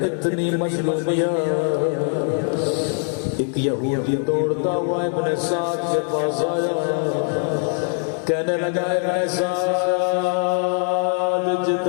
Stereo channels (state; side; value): silent; right; 55 dB below the other